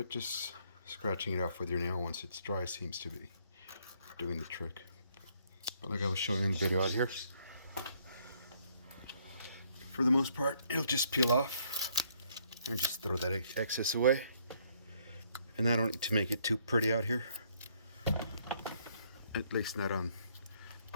just scratching it off with your nail once it's dry seems to be doing the trick. But like I was showing in the video out here, for the most part, it'll just peel off and just throw that excess away. And I don't need to make it too pretty out here, at least not on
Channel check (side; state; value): both; inverted; correlation -0.67